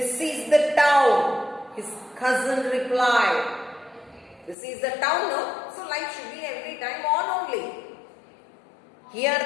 is the town, his cousin replied. This is the town, no? So light should be every time on only. Here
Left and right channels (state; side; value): drops out; right; at 4.5 s